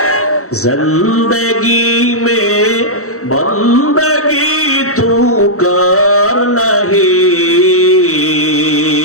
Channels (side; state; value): right; late; 0.64 ms